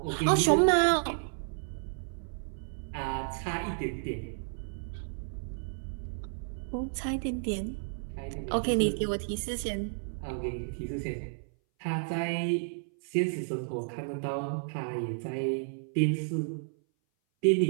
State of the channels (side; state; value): left; silent; 57 dB below the other